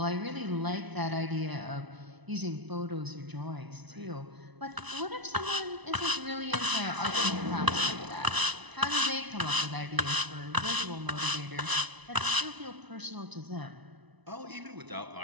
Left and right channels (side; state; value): left; late; 1.0 ms